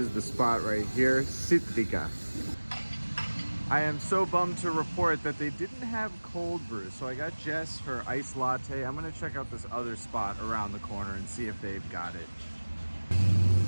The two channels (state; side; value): inverted; both; correlation -1.00